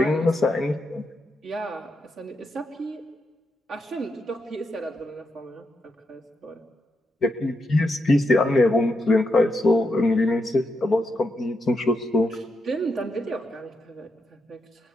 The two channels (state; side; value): normal; both; correlation 0.83